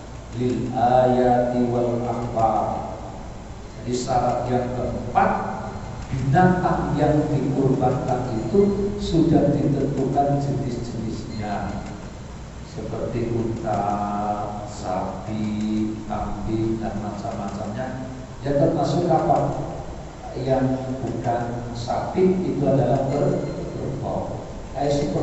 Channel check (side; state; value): both; identical; correlation 1.00